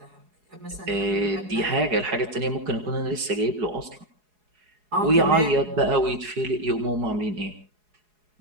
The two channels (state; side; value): late; left; 4.8 ms